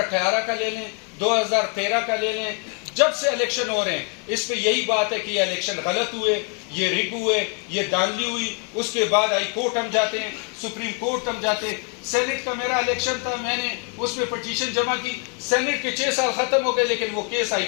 کا لے لیں، 2013 کا لے لیں، جب سے الیکشن ہو رہے ہیں اس پہ یہی بات ہے کہ یہ الیکشن غلط ہوئے، یہ رگ ہوئے، یہ دھاندلی ہوئی. اس کے بعد ہائی کورٹ ہم جاتے ہیں، سپریم کورٹ ہم جاتے ہیں. سینٹ کا میرا الیکشن تھا، میں نے اس میں پٹیشن جمع کی، سینٹ کے 6 سال ختم ہو گئے لیکن وہ کیس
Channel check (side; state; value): right; quieter; 36.6 dB